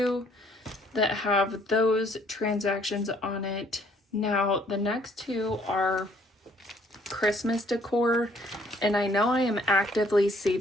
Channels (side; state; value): both; normal; correlation 0.63